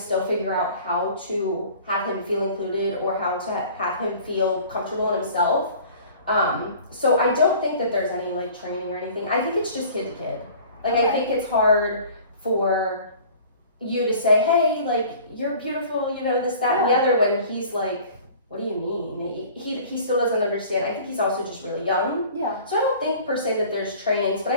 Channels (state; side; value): inverted; both; correlation -0.47